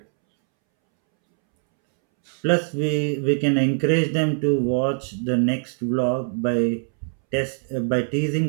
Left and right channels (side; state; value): left; silent; 64 dB below the other